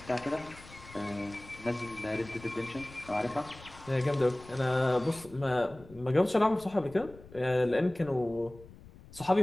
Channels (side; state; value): left; noise; rumble, 20 dB below the sound